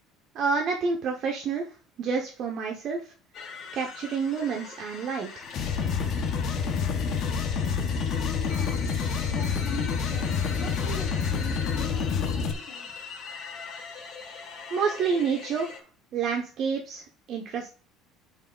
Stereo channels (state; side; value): normal; both; correlation 0.46